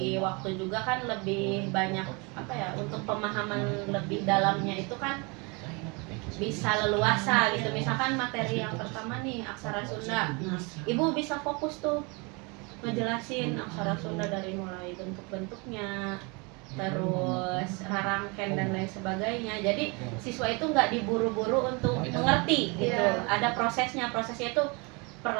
waktu juga kan lebih banyak untuk pemahaman lebih dalamnya itu kan bisa leluasa gitu. Misalkan materi yang pertama nih aksara Sunda, nah, ibu bisa fokus tuh ngejelasin aksara Sunda dari mulai bentuk-bentuknya, terus rarangken dan lain sebagainya. Jadi siswa itu nggak diburu-buru untuk mengerti gitu. Ada prosesnya itu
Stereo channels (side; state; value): left; quieter; 29.7 dB